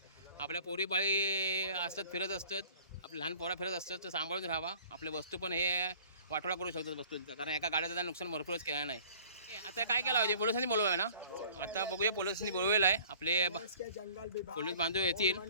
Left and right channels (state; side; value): inverted; both; correlation -0.50